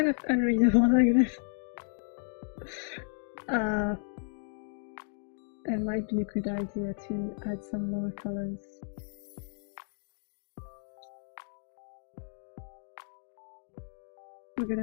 of unreadable like this. It might be a good idea to add some more colors. We're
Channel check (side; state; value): right; silent; 56 dB below the other